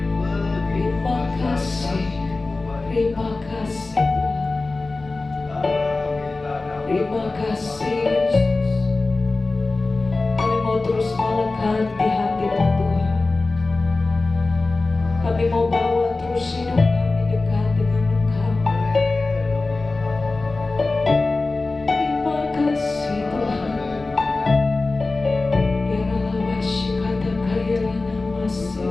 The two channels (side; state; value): right; quieter; 3.4 dB